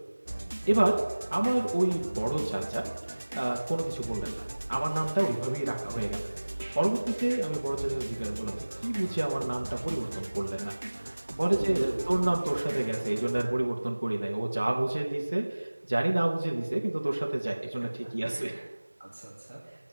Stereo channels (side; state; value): both; inverted; correlation -1.00